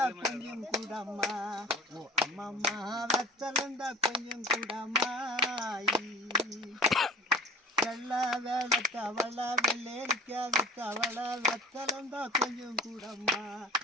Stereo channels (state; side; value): normal; both; correlation 0.42